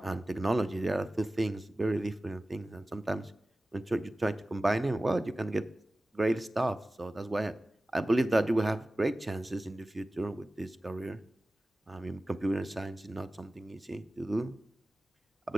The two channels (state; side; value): normal; both; correlation 0.96